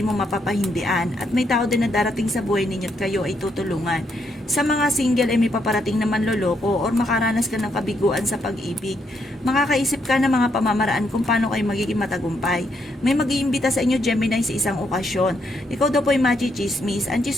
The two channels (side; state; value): both; normal; correlation 0.76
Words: mo mapapahindian at may tao din na darating sa buhay ninyo at kayo ay tutulungan. Sa mga single ay may paparating na manloloko or makaranas ka ng kabiguan sa pag-ibig. Makakaisip ka ng mga pamamaraan kung paano kayo magiging matagumpay. May mag-iimbita sa inyo Gemini sa isang okasyon. Ikaw daw po ay machichismis. Ang